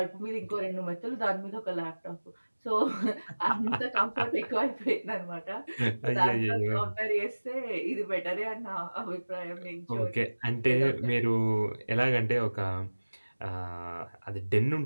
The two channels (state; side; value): inverted; both; correlation -1.00